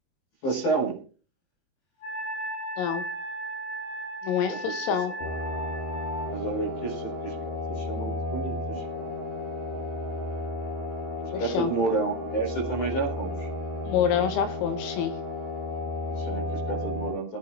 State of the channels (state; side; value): late; right; 22 ms